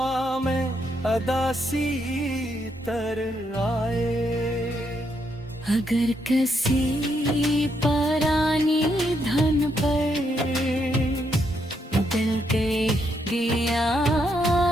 में अदासी तर आए, अगर किसी परानी धन पर दिल के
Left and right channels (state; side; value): normal; both; correlation 0.77